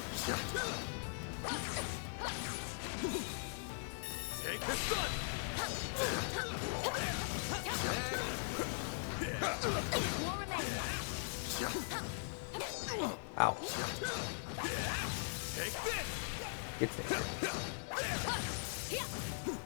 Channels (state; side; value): silent; right; digital silence